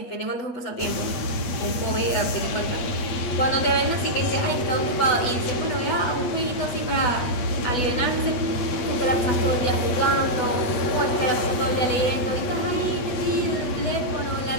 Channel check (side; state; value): right; late; 8.7 ms